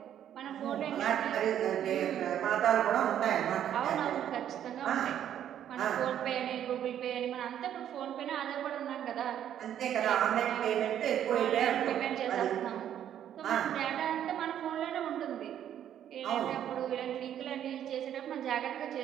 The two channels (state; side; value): quieter; left; 10.3 dB